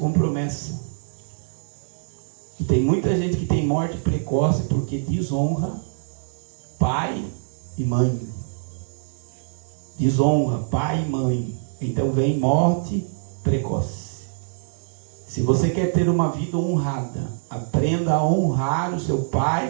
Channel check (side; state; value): left; silent; 63 dB below the other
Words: promessa. E tem muita gente que tem morte precoce porque desonra pai e mãe. Desonra pai e mãe. Então vem morte precoce. Se você quer ter uma vida honrada, aprenda a honrar o seu